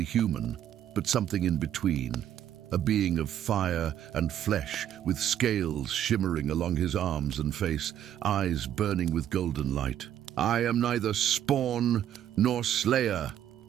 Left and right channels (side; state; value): left; quieter; 10.7 dB